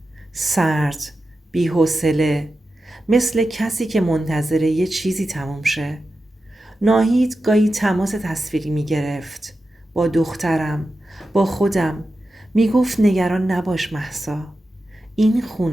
سرد، بی‌حوصله، مثل کسی که منتظر یه چیزی تموم شه. ناهید گاهی تماس تصویری می گرفت با دخترم، با خودم. می گفت نگران نباش مهسا، این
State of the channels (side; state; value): both; normal; correlation 0.92